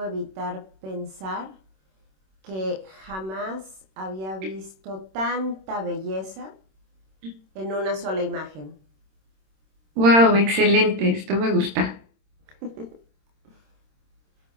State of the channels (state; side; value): late; left; 26 ms